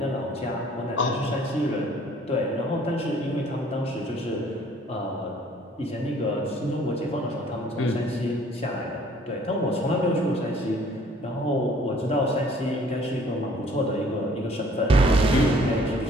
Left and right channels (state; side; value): normal; both; correlation 0.56